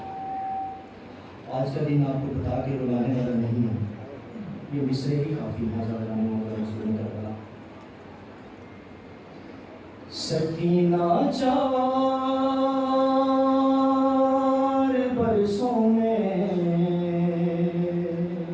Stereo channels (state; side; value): identical; both; correlation 1.00